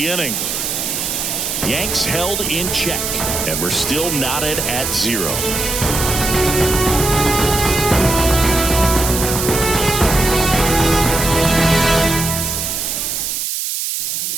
inning. Yanks held in check. And we're still knotted at 0.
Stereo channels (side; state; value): right; noise; hiss, 2 dB below the sound